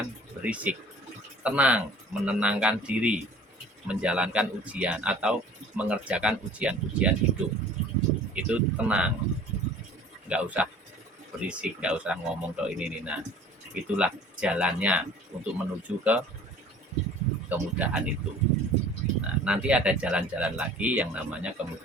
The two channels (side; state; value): both; normal; correlation 0.48